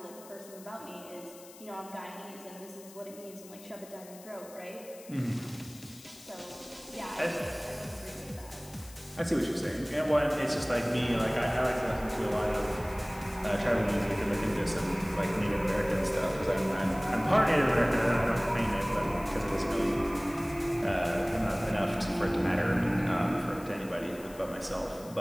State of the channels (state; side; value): noise; left; hiss, 20 dB below the sound